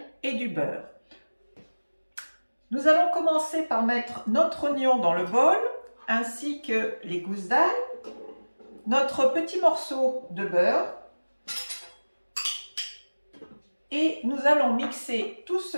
et du beurre. Nous allons commencer par mettre notre oignon dans le bol, ainsi que les gousses d'ail, notre petit morceau de beurre, et nous allons mixer tout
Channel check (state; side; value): inverted; both; correlation -1.00